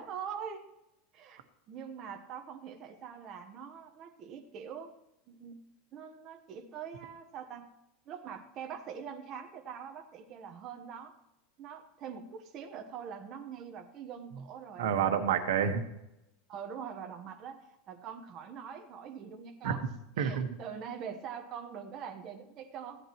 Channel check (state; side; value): quieter; left; 7.2 dB